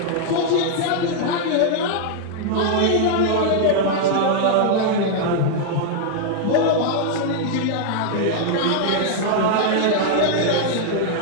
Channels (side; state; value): both; different; correlation -0.01